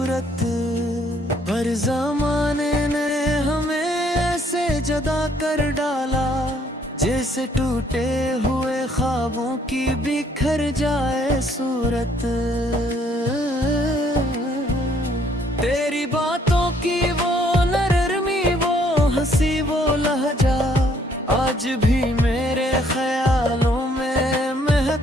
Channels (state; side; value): normal; both; correlation 0.65